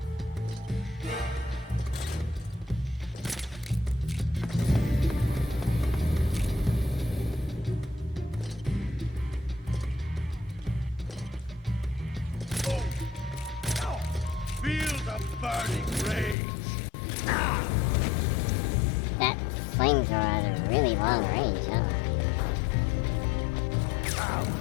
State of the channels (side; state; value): right; drops out; at 16.4 s